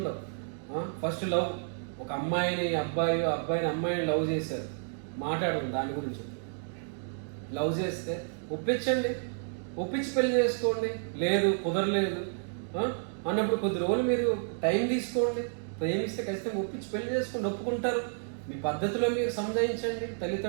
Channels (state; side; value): silent; left; digital silence